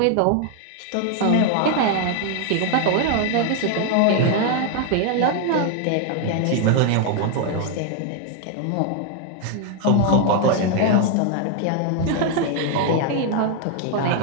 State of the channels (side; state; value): both; different; correlation 0.00